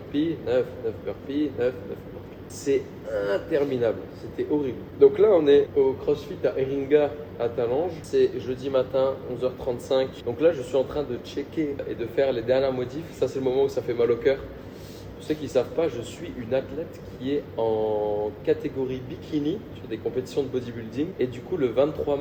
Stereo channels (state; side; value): identical; both; correlation 1.00